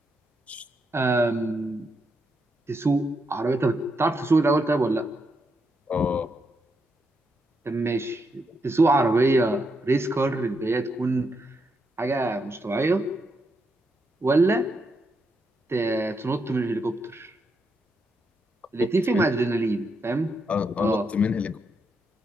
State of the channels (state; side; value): normal; both; correlation 0.81